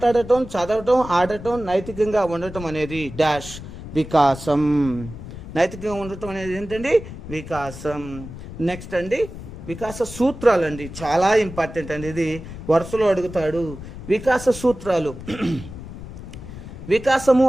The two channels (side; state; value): left; noise; rumble, 12 dB below the sound